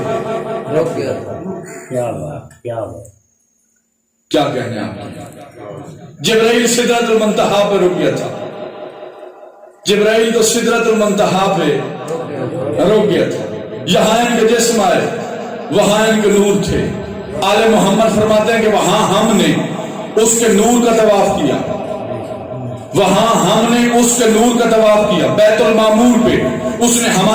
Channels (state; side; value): identical; both; correlation 1.00